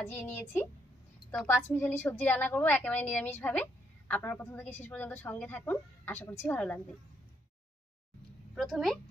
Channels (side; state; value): both; normal; correlation 0.74